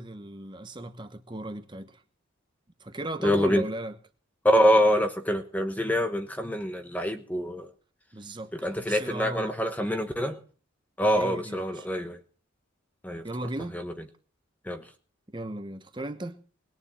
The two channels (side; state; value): both; normal; correlation 0.79